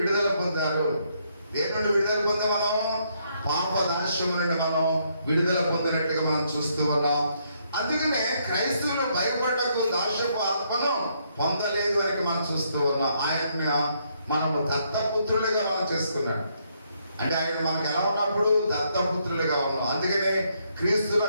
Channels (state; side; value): inverted; both; correlation -0.73